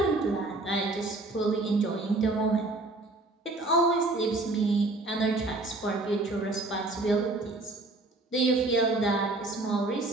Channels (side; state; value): left; quieter; 3.0 dB